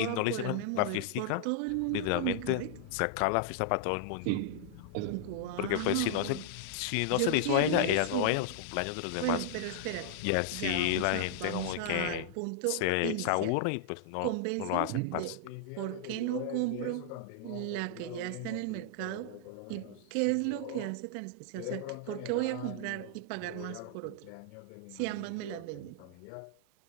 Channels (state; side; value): different; both; correlation -0.01